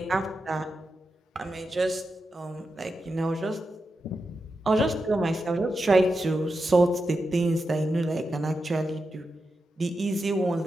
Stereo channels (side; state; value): both; normal; correlation 0.89